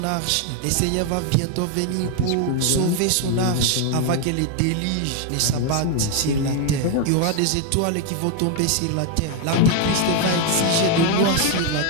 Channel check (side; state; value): both; different; correlation 0.01